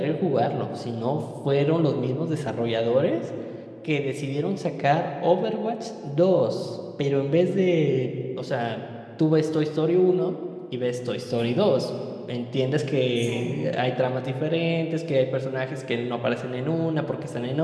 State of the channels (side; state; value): both; identical; correlation 1.00